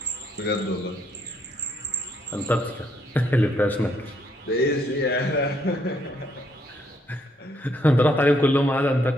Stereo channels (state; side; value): normal; both; correlation 0.72